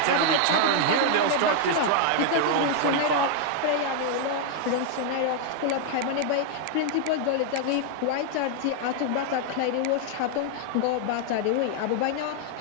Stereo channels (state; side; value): different; both; correlation 0.00